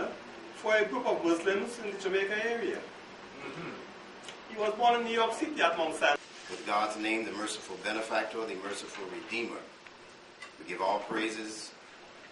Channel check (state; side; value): identical; both; correlation 1.00